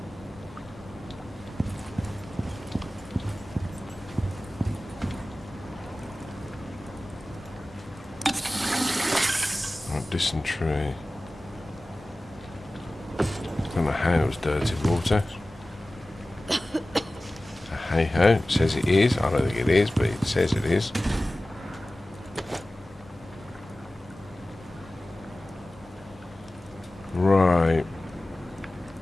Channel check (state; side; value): normal; both; correlation 0.97